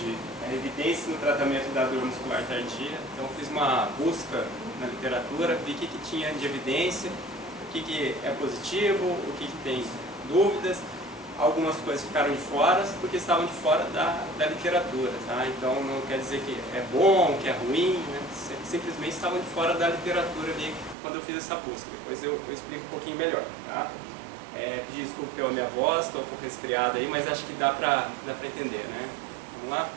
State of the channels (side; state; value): left; drops out; at 21.0 s